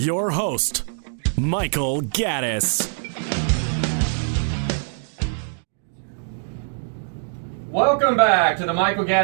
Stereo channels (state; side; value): silent; left; digital silence